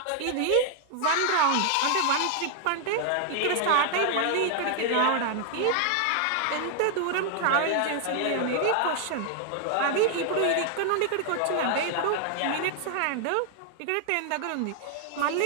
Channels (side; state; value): both; different; correlation 0.00